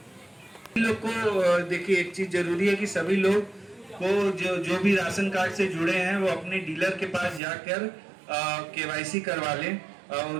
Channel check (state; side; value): drops out; left; at 7.4 s